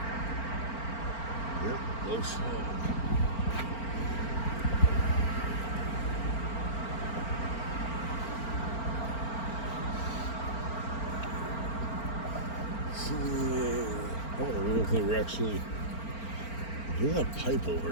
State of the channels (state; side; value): late; right; 4.4 ms